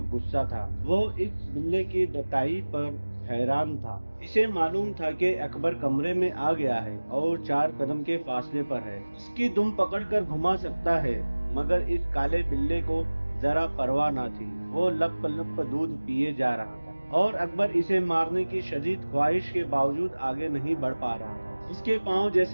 गुस्सा था। वो इस बिल्ले की डटाई पर हैरान था। इसे मालूम था कि अकबर कमरे में आ गया है और 4 कदम के फासले पर है। इसकी दुम पकड़कर घुमा सकता है, मगर इस काले बिल्ले को जरा परवाह ना थी। वो लप लप दूध पिए जा रहा था, और अकबर इसे मारने की शदीद ख्वाहिश के बावजूद आगे नहीं बढ़ पा रहा था। इसके पांव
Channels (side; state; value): both; inverted; correlation -1.00